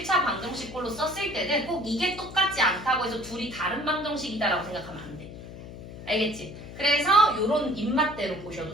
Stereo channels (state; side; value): noise; left; hum, 13 dB below the sound